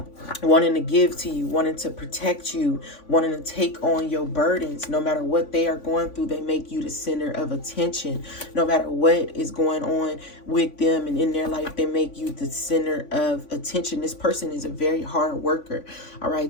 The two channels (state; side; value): late; right; 3.5 ms